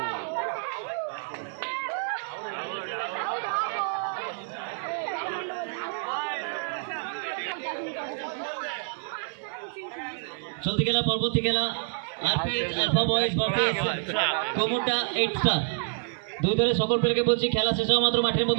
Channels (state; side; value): silent; left; 58 dB below the other